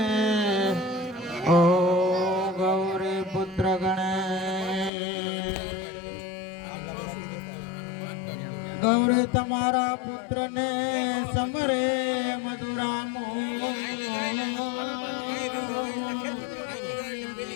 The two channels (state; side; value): drops out; right; at 4.9 s